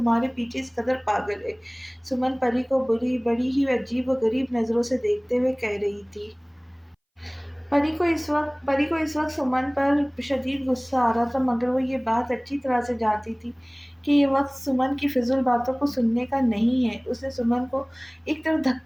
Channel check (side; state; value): both; identical; correlation 1.00